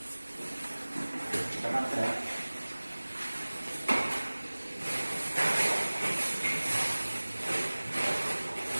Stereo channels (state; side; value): inverted; both; correlation -1.00